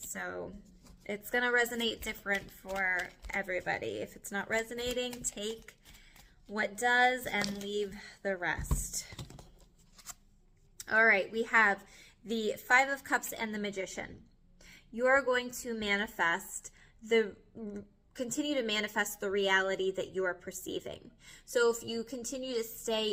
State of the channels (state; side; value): identical; both; correlation 1.00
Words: it's going to resonate different for everybody. If it's not resonating, take what does and leave the rest. All right, we have the Five of Cups and the Magician. You are going to continue to manifest the reality that you are perceiving. So if you continue to stay